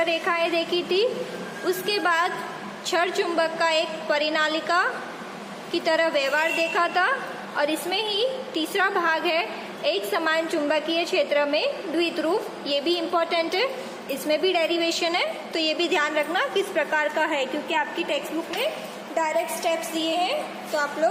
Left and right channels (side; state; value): both; identical; correlation 1.00